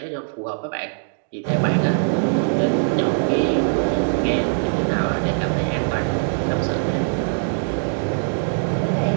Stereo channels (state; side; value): silent; left; 64 dB below the other